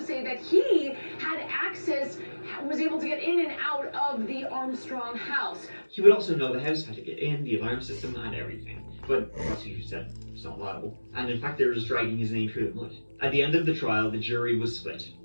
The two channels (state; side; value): inverted; both; correlation -1.00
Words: that he had access, was able to get in and out of the Armstrong house. He would also know the house, how to get in, the alarm system, and everything. But the prosecution said it's not liable. And in fact, they were just dragging his name through the mud. At the end of the trial, the jury was split,